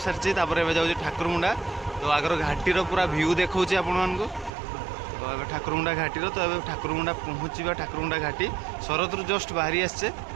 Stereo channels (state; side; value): drops out; left; at 4.5 s